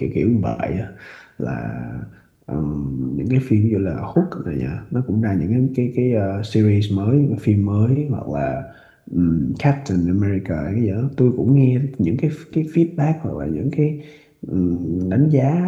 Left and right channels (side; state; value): both; identical; correlation 1.00